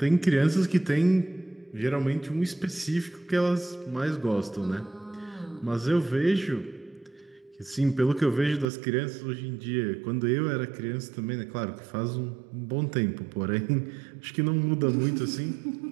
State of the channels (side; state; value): left; drops out; at 8.7 s